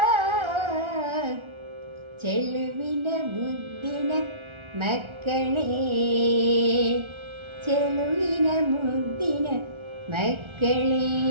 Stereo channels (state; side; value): late; left; 1.3 ms